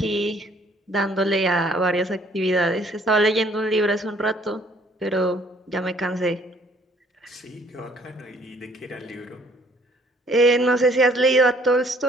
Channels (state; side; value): normal; both; correlation 0.60